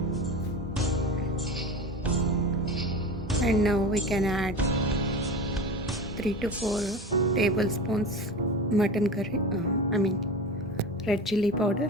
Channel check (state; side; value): normal; both; correlation 0.30